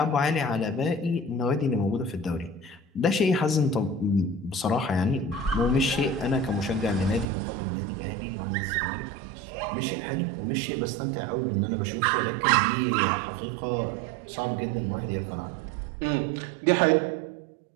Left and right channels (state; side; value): drops out; left; at 7.2 s